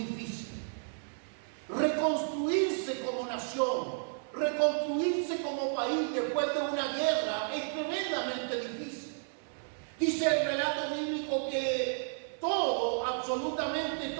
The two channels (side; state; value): left; silent; 56 dB below the other